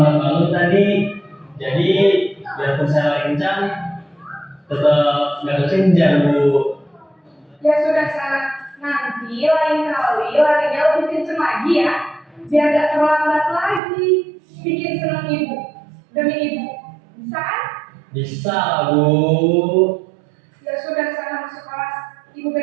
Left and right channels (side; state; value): left; drops out; at 13.8 s